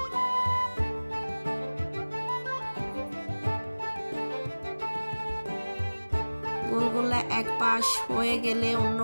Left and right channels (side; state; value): both; inverted; correlation -1.00